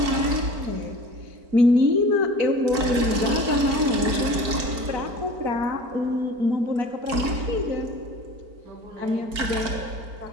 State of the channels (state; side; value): late; left; 4.6 ms